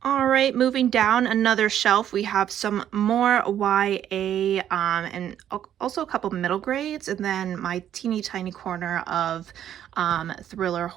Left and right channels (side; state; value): left; quieter; 10.5 dB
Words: All right, moving down another shelf, we have some more YA and also a couple middle grades, and then my teeny tiny corner of thriller